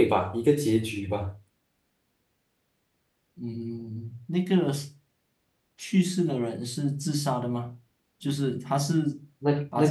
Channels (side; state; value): both; identical; correlation 1.00